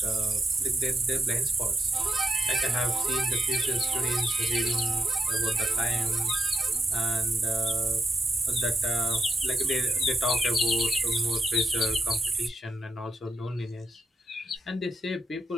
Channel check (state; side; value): normal; both; correlation 0.83